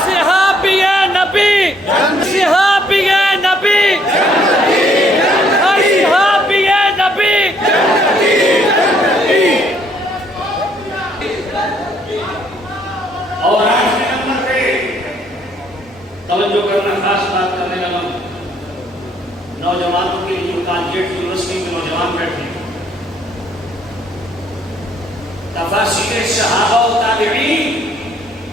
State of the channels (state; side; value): normal; both; correlation 0.66